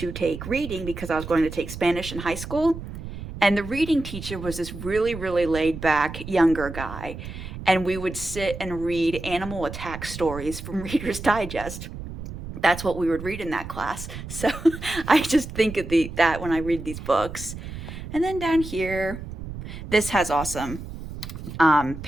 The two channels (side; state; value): right; noise; rumble, 10 dB below the sound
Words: take reading because I was going to take Spanish in high school, and the reading teacher was this really, really laid-back younger guy, and we would sit and read animal attack stories from Reader's Digest. That's what we would read in that class, so I just think of that when I read these books. And then down here, this has awesome